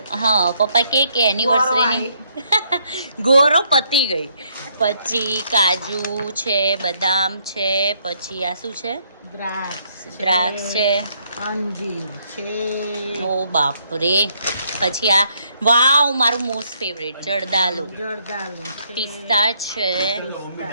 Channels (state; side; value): inverted; both; correlation -0.71